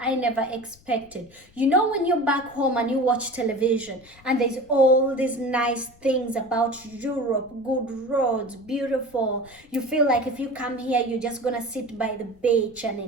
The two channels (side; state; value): left; noise; rumble, 27 dB below the sound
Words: I never expected. You know, when you're back home and you watch television and there's all these nice things about Europe, good roads, beautiful. You feel like if you come here, you're just gonna sit by the beach and